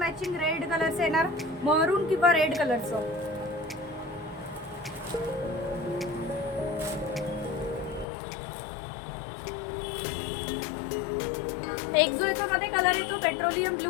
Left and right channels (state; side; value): drops out; right; at 8.1 s